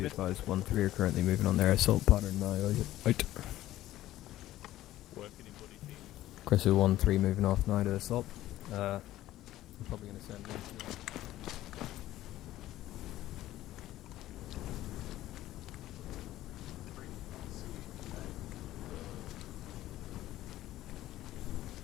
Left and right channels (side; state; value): right; quieter; 14.7 dB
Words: are currently moving on their assault pattern now. Out. Chris 1-3 moving off now to assault. I'm probably going to send 1-2.